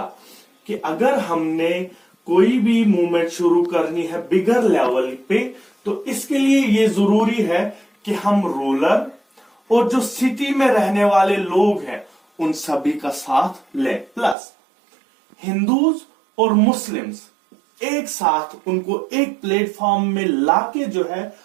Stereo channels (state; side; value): drops out; left; at 14.4 s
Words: कि अगर हमने कोई भी मूवमेंट शुरू करनी है बिगर लेवल पे, तो इसके लिए ये जरूरी है कि हम रूरल और जो सिटी में रहने वाले लोग हैं उन सभी का साथ लें, प्लस हिंदूज और मुस्लिम्स एक साथ, उनको एक प्लेटफॉर्म में लाके जो है